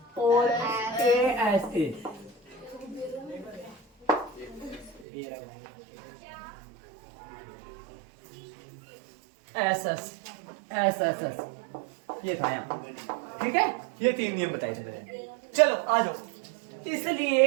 और ए एस ये था यहाँ, ठीक है। ये 3 नियम बताए थे मैंने। चलो आ जाओ,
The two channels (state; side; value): drops out; left; at 5.1 s